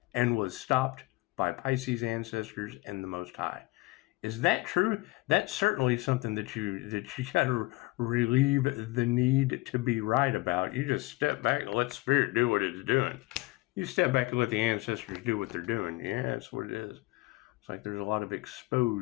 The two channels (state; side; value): quieter; right; 21.5 dB